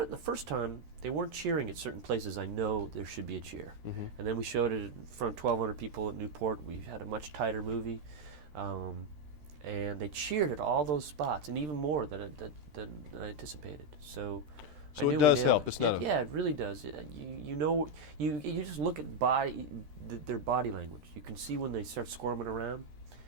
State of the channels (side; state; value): left; late; 13 ms